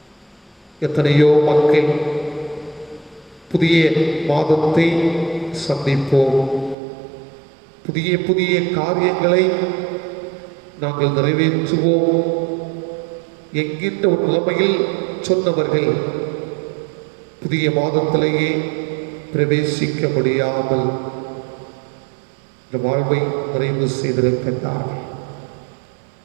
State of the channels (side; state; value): left; drops out; at 6.8 s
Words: எத்தனையோ மக்கள் புதிய மாதத்தை சந்திப்போம். புதிய புதிய காரியங்களை நாங்கள் நிறைவேற்றுவோம் என்கின்ற ஒரு நிலைமையில் சொன்னவர்கள் புதிய மாதத்திலேயே பிரவேசிக்க முடியாமல் இந்த வாழ்வை நிறைவு செய்திருக்கின்றார்கள்.